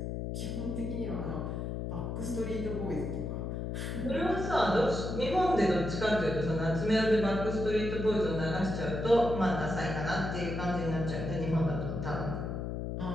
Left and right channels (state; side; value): noise; left; hum, 3 dB below the sound